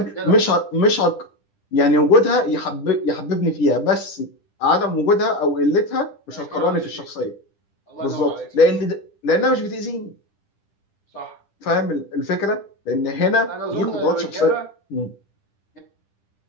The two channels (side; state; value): right; late; 10 ms